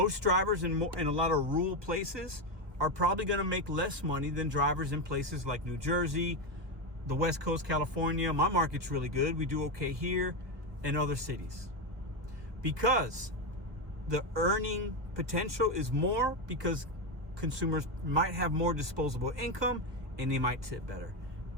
drivers in a lot of rural places are probably going to make less money than drivers in places like New Jersey, the West Coast, California. My market's really good. We do okay here and other cities. Because the earning potential is more because consumers might have more disposable income and they might tip better.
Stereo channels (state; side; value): late; left; 1.1 ms